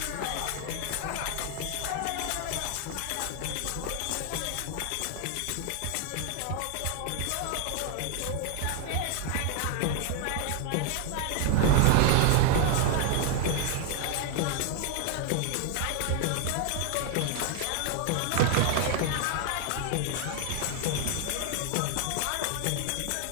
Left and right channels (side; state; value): both; different; correlation 0.00